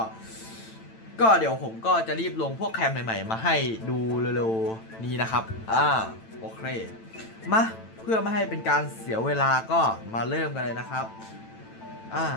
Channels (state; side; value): late; right; 9.0 ms